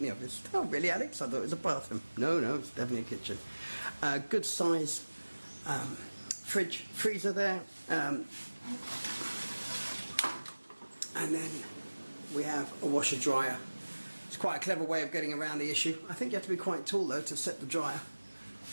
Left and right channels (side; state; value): both; inverted; correlation -1.00